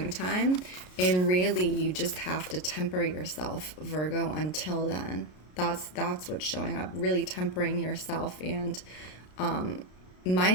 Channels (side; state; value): right; late; 33 ms